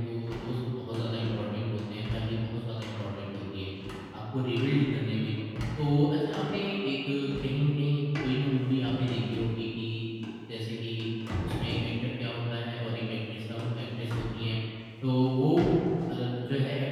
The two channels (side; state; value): both; identical; correlation 1.00